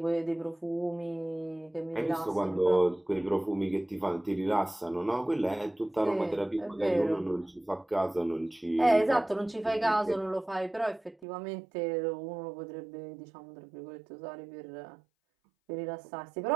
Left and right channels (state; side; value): drops out; left; at 11.2 s